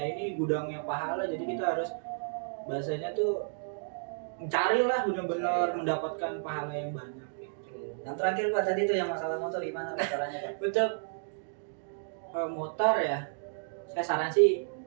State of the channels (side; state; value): left; silent; digital silence